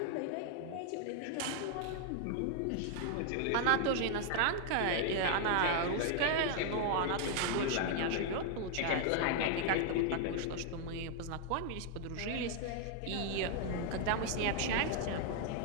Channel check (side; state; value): both; different; correlation 0.00